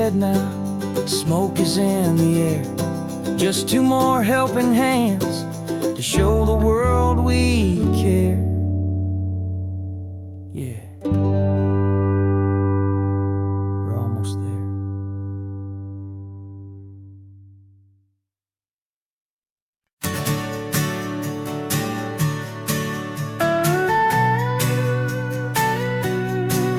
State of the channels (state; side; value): identical; both; correlation 1.00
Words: now, smoke is in the air. Just two more helping hands to show the world we care. Yeah. We're almost there.